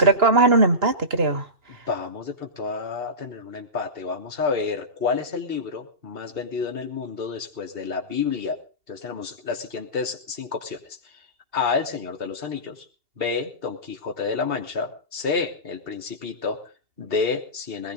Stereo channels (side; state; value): left; late; 2.7 ms